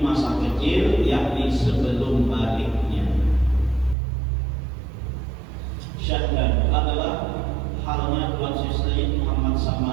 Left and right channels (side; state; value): left; drops out; at 4.0 s